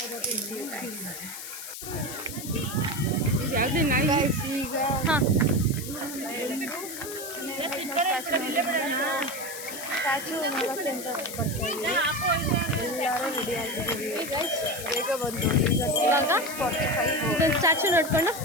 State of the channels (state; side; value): noise; left; hiss, 9 dB below the sound